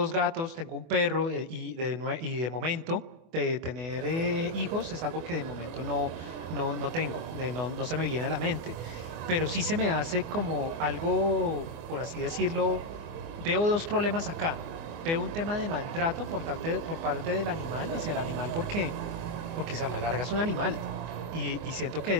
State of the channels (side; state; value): left; late; 24 ms